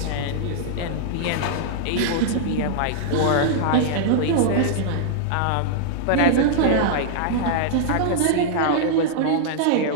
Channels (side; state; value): both; different; correlation -0.01